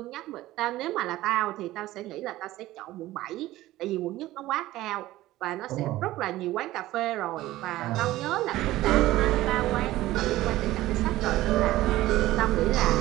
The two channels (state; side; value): quieter; left; 16.3 dB